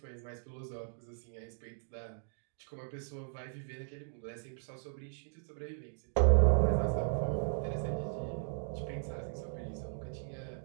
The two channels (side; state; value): left; silent; digital silence